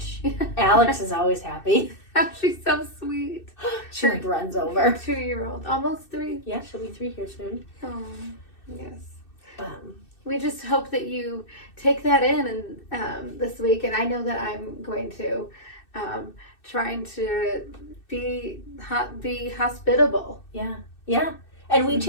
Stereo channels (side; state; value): right; late; 2.6 ms